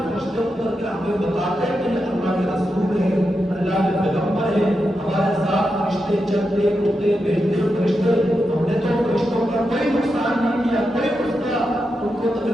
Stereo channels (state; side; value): normal; both; correlation 0.87